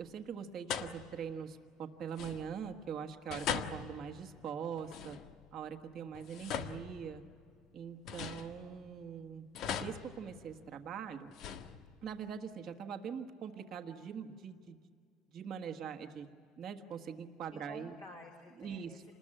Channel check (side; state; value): both; normal; correlation 0.51